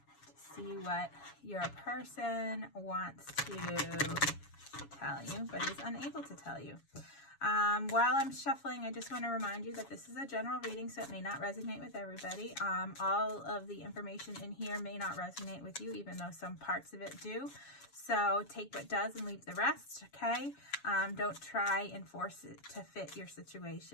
see what your person wants to tell you but is unable to tell you. While I'm shuffling, I just want to remind you that this is a general reading, so it may not resonate with everybody. All of the information in here may not resonate with you, even though some parts of it do. So take what does and leave the rest, okay? Don't try and force it to fit your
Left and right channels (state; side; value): late; right; 7.2 ms